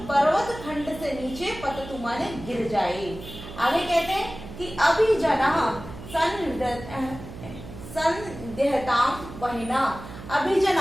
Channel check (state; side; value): noise; right; hum, 13 dB below the sound